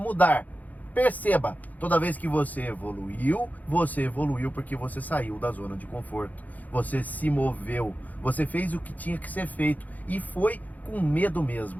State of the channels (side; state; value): right; late; 0.079 ms